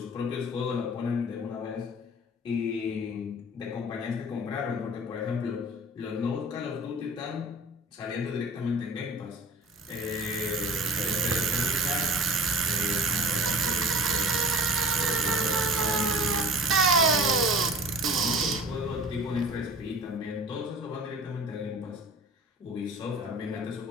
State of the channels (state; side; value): normal; both; correlation 0.42